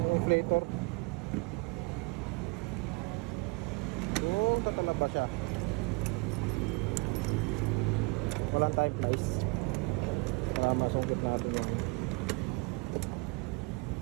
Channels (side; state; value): left; quieter; 28.2 dB